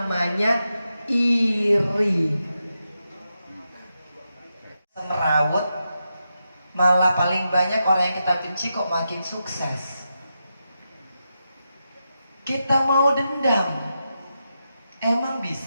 iri. Merawut, malah paling banyak orang yang kita benci kok makin sukses. Kita mau dendam, emang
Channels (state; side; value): inverted; both; correlation -0.87